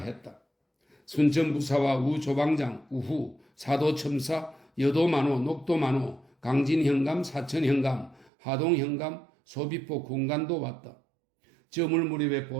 순천부사와 우조방장, 우후, 사도첨사, 여도만호, 녹도만호, 강진현감, 사천현감, 하동현감, 소비포 군관도 왔다. 저물 무렵에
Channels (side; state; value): left; drops out; at 8.3 s